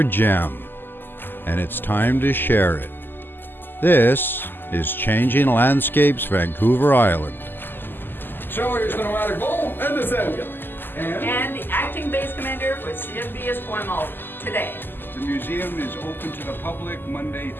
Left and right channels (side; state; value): right; late; 0.095 ms